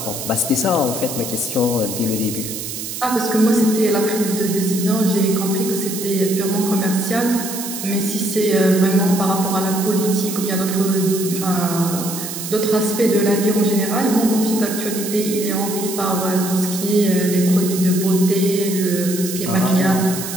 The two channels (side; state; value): right; noise; hiss, 7 dB below the sound